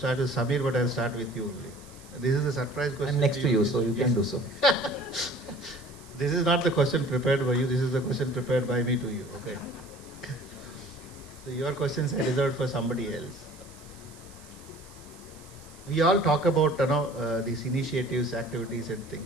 with Samir, but I'll start with you only. This is a surprise question. I'm next to you, so you can do so. This is not the question prepared by you. This is the question prepared by me to you. Okay. So your questions are reserved for somebody else. We all talk about these initiatives, activities, and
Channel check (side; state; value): right; noise; hiss, 22 dB below the sound